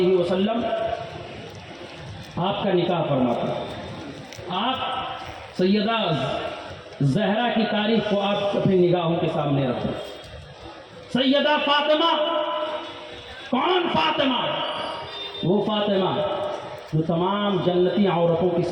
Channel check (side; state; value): both; identical; correlation 1.00